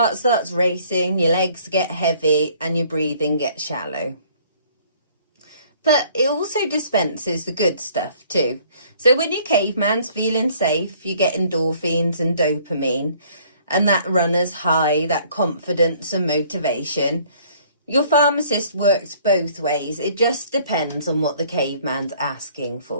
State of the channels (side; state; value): both; inverted; correlation -0.58